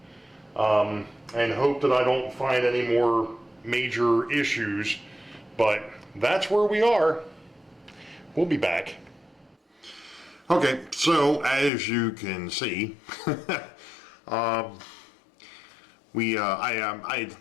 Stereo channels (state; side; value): drops out; right; at 11.7 s